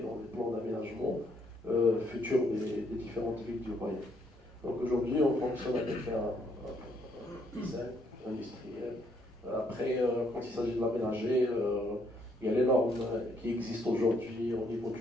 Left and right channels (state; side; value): normal; both; correlation 0.71